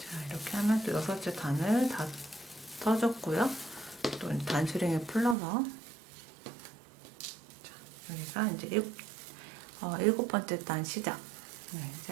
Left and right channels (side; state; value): left; drops out; at 5.4 s